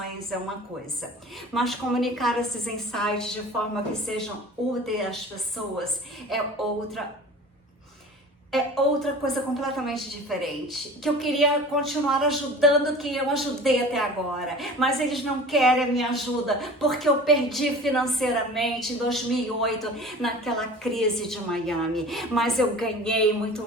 é uma coisa. Mas comunicar esses insights de forma que sejam úteis às pessoas é outra coisa completamente diferente, que eu queria continuar ajudando quem eu ajudei até agora, mas eles não querem a minha ajuda, porque eu perdi financeiramente em 2008, naquela crise de Miami, mas eu ganhei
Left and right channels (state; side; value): normal; both; correlation 0.40